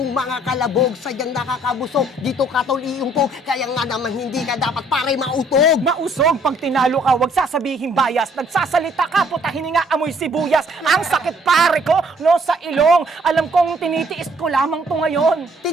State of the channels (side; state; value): both; normal; correlation 0.62